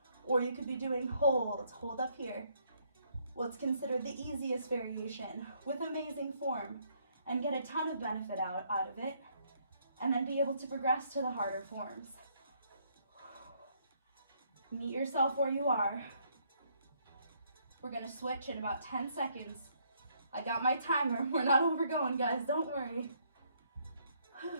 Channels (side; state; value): both; inverted; correlation -0.69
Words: Or you could be doing holds, hold up here, what's considered the easiest variation with amazing form, and get a ton of benefit out of it, and then be able to progress to the harder forms. Meet yourself where you are. We're gonna switch in about 10 seconds. I got my timer. We're not overgoing, guys, don't worry.